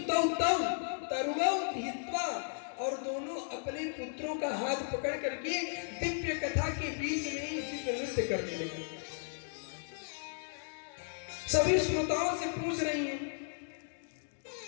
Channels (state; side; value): silent; right; digital silence